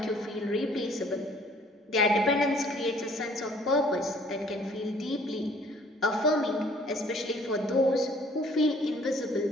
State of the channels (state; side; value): normal; both; correlation 0.58